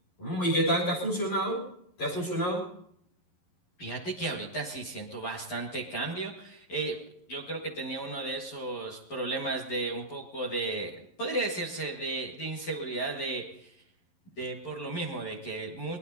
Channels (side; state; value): right; late; 11 ms